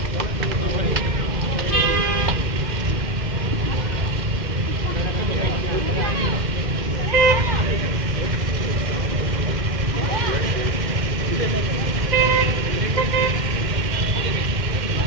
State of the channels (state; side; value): late; left; 2.1 ms